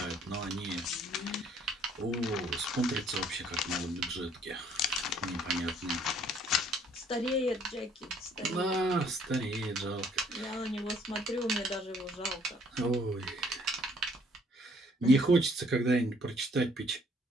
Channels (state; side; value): normal; both; correlation 0.62